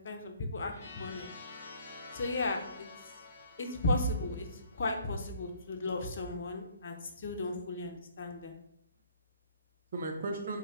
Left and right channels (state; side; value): inverted; both; correlation -0.60